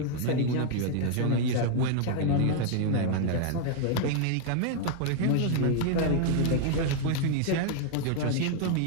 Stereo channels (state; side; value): different; both; correlation 0.00